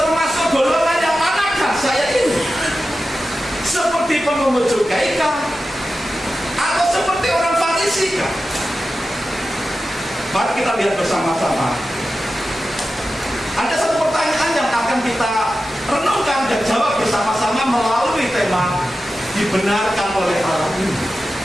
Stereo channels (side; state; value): both; normal; correlation 0.92